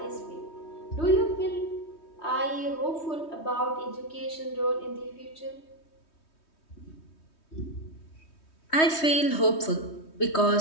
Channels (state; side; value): late; right; 3.2 ms